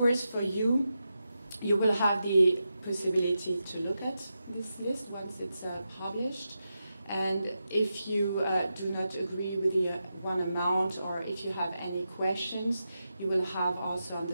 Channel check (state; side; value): inverted; both; correlation -0.88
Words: for you, you will have the possibility to look at this list once it's published. And if you do not agree with the one amount, or if you have any questions, you will have also on